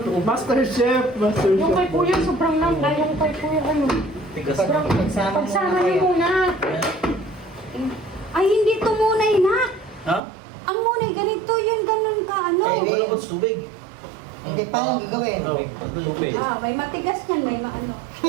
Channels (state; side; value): drops out; left; at 10.2 s